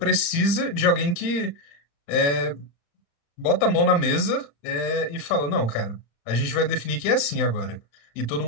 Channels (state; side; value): late; right; 35 ms